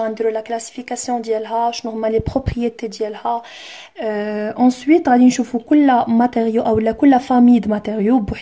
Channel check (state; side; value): identical; both; correlation 1.00